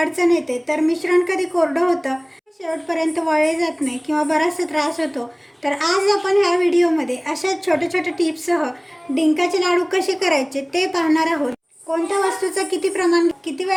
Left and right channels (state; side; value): identical; both; correlation 1.00